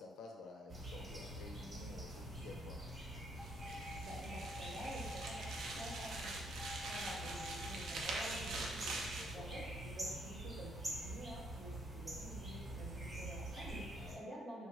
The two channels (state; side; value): normal; both; correlation 0.71